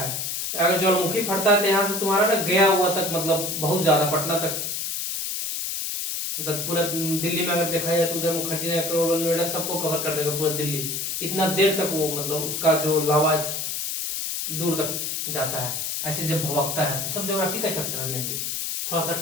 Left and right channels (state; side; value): noise; left; hiss, 3 dB below the sound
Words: अगर ज्वालामुखी फटता है तो यहाँ से तुम्हारा ना गया हुआ तक मतलब बहुत ज्यादा, पटना तक, मतलब पूरा दिल्ली में अगर देखा जाए तो उधर मुखर्जी नगर, करोड़, नोएडा सबको कवर कर देगा पूरा दिल्ली। इतना देर तक वो मतलब उसका जो लावा दूर तक जाता है, ऐसे जब भवकता है। तो सब ज्योग्राफी का चैप्टर में भी थोड़ा सा